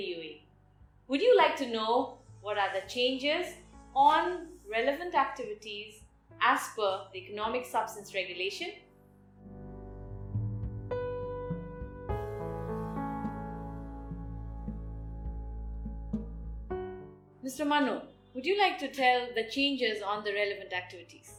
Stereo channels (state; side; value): identical; both; correlation 1.00